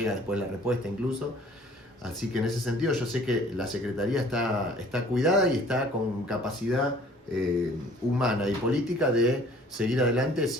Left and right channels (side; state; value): both; normal; correlation 0.53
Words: después la respuesta incluso. Así que en ese sentido yo sé que la Secretaría está cuidada y está con capacidad humana y política de seguir adelante